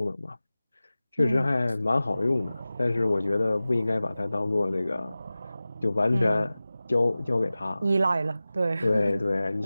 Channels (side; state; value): both; inverted; correlation -0.97